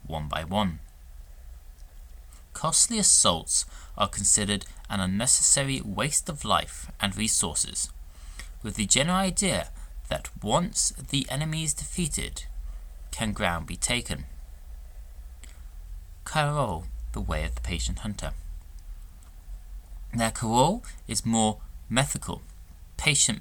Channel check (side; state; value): both; identical; correlation 1.00